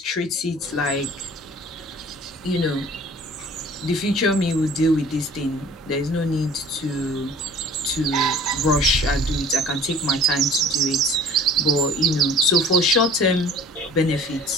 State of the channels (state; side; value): normal; both; correlation 0.49